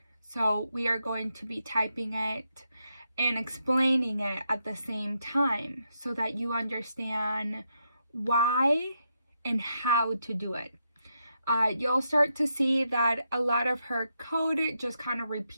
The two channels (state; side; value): inverted; both; correlation -0.82